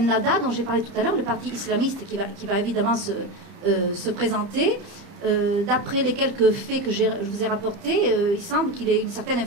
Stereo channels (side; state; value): left; late; 30 ms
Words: dont j'ai parlé tout à l'heure, le parti islamiste qui va évidemment se présenter. D'après les quelques faits que je vous ai rapportés, il semble qu'il ait une certaine